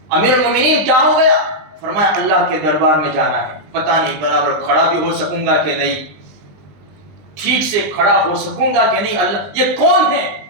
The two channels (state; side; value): late; left; 20 ms